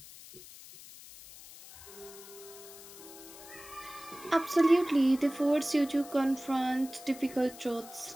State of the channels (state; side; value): noise; left; hiss, 17 dB below the sound